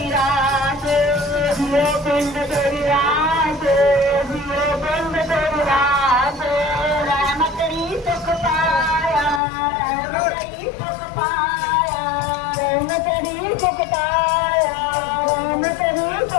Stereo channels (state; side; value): drops out; right; at 9.4 s